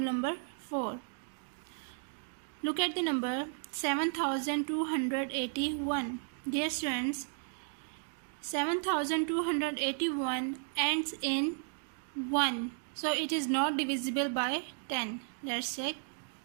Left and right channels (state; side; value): silent; left; 55 dB below the other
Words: 4. Look at the number 7281. Dear students, 7281 ends in 1. So it is not divisible by 10. Let's check.